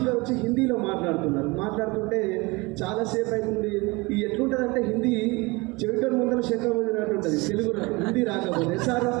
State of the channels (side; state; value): left; quieter; 25.0 dB